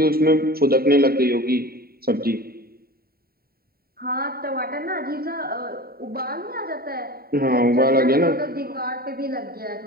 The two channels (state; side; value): late; left; 0.44 ms